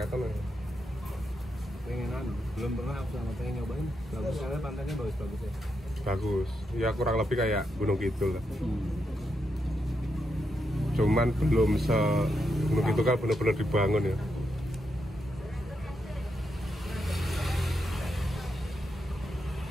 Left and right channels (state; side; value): normal; both; correlation 0.83